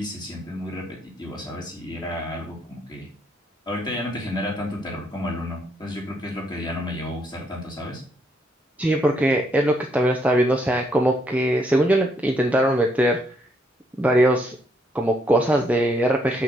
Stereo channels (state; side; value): normal; both; correlation 0.72